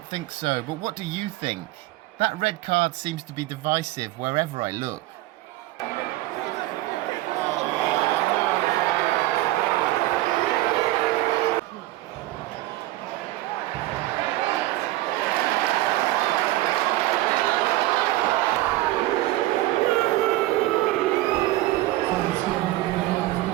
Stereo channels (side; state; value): left; quieter; 17.4 dB